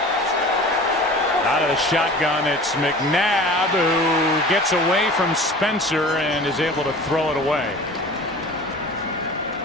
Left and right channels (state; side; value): normal; both; correlation 0.41